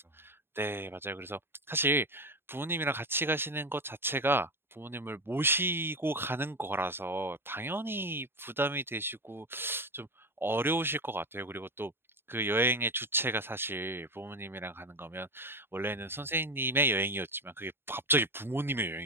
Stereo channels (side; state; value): left; late; 0.11 ms